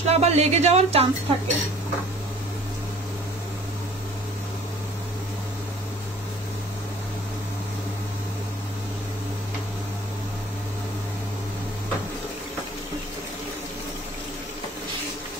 আবার লেগে যাওয়ার চান্স থাকে।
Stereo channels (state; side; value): normal; both; correlation 0.51